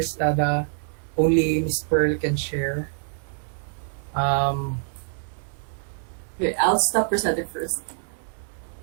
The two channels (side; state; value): left; silent; 61 dB below the other